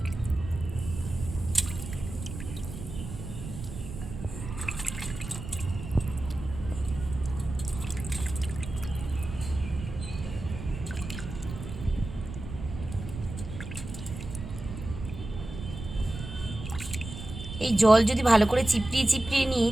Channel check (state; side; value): noise; right; rumble, 9 dB below the sound